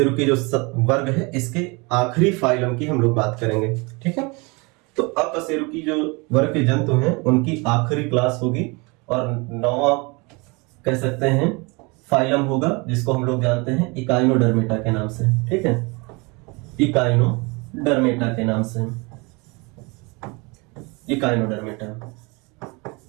जो वर्ग है इसके आखिरी फाइलम की हम लोग बात करेंगे। ठीक है, तो अकशेरुकी जो वर्ग के जंतु हैं उनकी आखिरी क्लास होगी, और 9वां कह सकते हैं फाइलम होगा जिसको हम लोग जानते हैं इकाइनोडर्मेटा के नाम से। ठीक है, इकाइनोडर्मेटा के नाम से, इकाइनोडर्मेटा।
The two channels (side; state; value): left; quieter; 28.1 dB